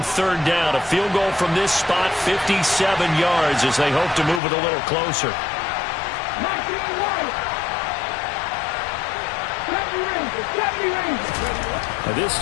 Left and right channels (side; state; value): right; drops out; at 4.4 s